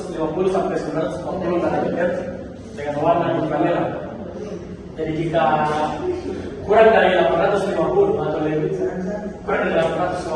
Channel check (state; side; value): identical; both; correlation 1.00